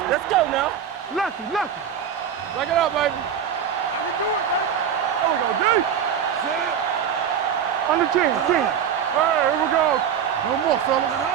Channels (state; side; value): quieter; left; 8.3 dB